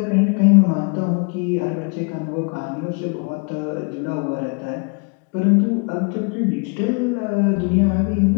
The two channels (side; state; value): right; quieter; 34.5 dB